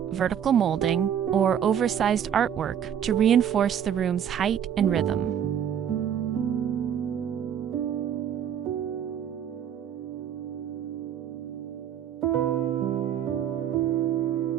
vertical molding, or oversized artwork to reinforce the room's height and rhythm.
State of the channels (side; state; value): left; quieter; 9.0 dB